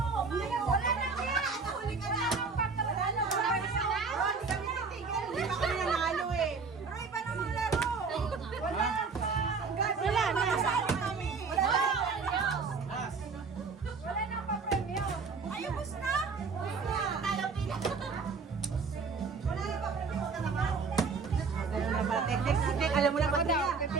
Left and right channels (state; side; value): quieter; left; 4.8 dB